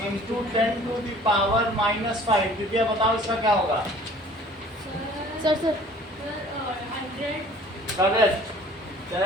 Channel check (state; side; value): normal; both; correlation 0.51